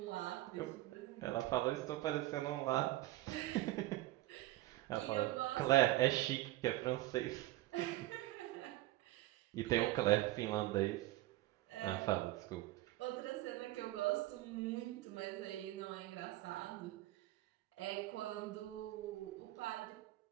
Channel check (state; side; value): quieter; left; 16.8 dB